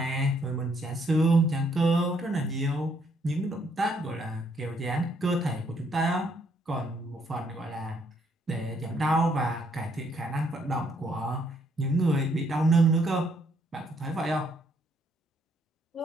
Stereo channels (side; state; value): both; normal; correlation 0.70